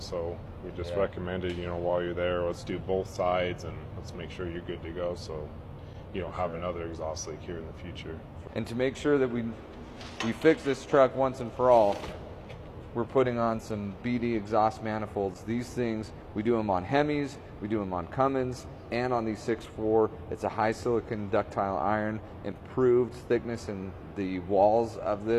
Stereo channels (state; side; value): identical; both; correlation 1.00